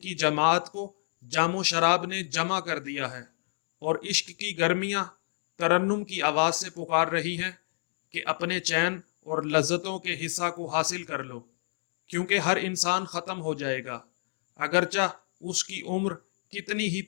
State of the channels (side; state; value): right; silent; digital silence